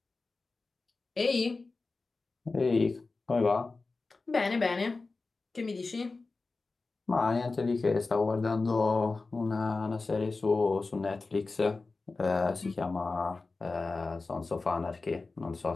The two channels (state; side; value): quieter; right; 3.7 dB